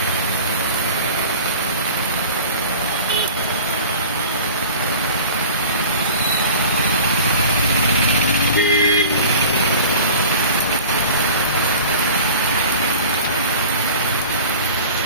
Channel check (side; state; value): both; inverted; correlation -0.40